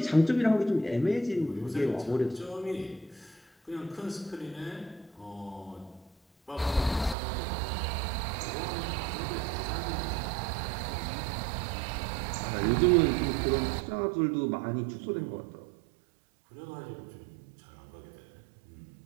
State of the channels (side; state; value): left; drops out; at 7.2 s